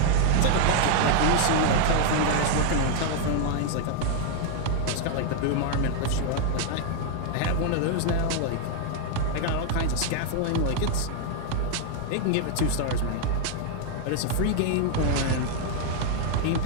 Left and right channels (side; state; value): both; different; correlation 0.00